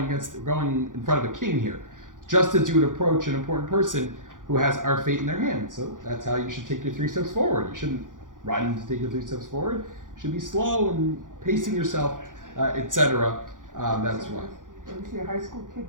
in front of a king here. Just as you would approach an important person who has our fate in their hands. So that's how you should take your 3 steps forward. You shouldn't run to take your 3 steps forward. You should be slow and pacing yourself, etc. That's why. You see a high school kid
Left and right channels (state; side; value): late; left; 0.88 ms